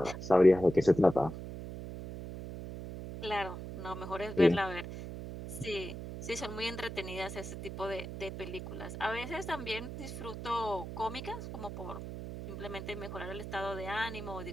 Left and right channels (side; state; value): right; noise; hum, 8 dB below the sound